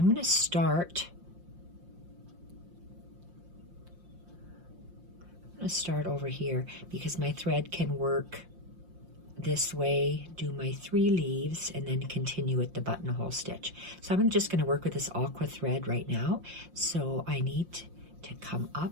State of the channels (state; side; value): late; left; 5.7 ms